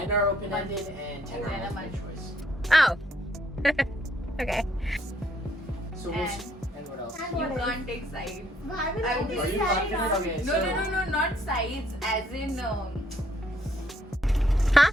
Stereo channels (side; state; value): both; normal; correlation 0.68